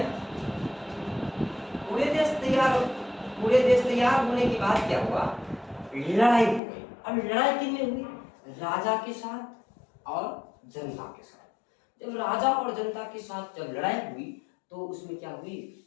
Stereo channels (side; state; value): right; drops out; at 6.6 s